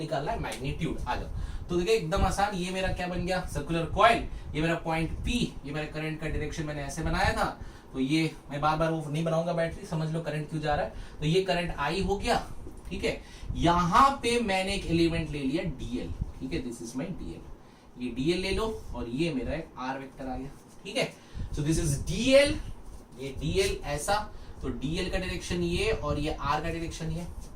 है मैग्नीट्यूड। आ जाओ, तो देखिए एकदम आसान, ये मेरा क्या बन गया सर्कुलर कॉइल, ये मेरा पॉइंट पी, ये मेरा करंट का डायरेक्शन मैंने ऐसे बनाया था, तो ये मैं बार बार वो नहीं बनाऊंगा बैटरी, समझ लो करंट क्यों जा रहा है। तो ये करंट आई हो गया, ठीक है। यहां पे मैंने एक एलिमेंट ले लिया डीएल, ठीक है, दिस इज माई डीएल, ये डीएल ले लो और ये मेरा एक आर वेक्टर आ गया, ठीक है। सो दिस इज डीएल, ये डीएल ऐसा, तो डीएल का डायरेक्शन ये और ये आर का डायरेक्शन ये,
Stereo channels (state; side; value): identical; both; correlation 1.00